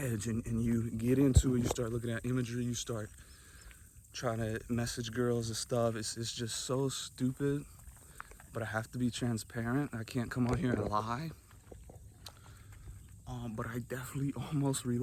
and you get into it, you start looking at imagery, you start trying to message girls and stuff. It's just so stupid, but I have to be transparent. I can't come on here and lie. But I definitely almost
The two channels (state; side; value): identical; both; correlation 1.00